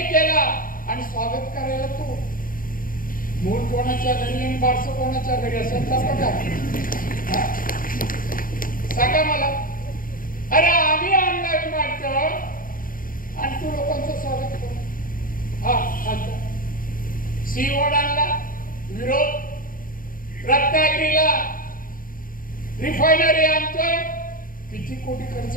केला आणि स्वागत करायला तो मूळ कोणाच्या घरी आणि बारसं कोणाच्या घरी असेल तर बघा सांगा मला. अरे आम्ही आणला विमानतळ आणि तू लोकांचं स्वागत करू. हा सीओड आणला विरोध. रत्नागिरीला रिफायनरी आणतोय. किती कोटी खर्च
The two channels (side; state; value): right; late; 0.41 ms